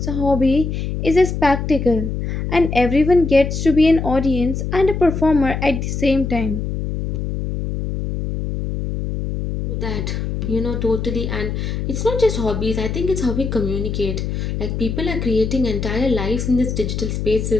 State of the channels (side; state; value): left; noise; hum, 3 dB below the sound